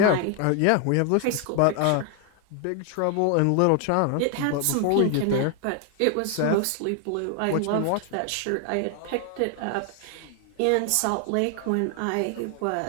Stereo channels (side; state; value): both; different; correlation 0.00